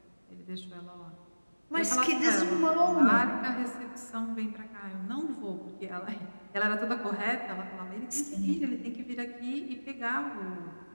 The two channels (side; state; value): both; inverted; correlation -1.00